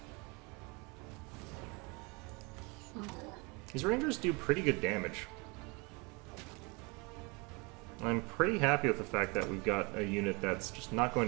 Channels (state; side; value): quieter; left; 28.5 dB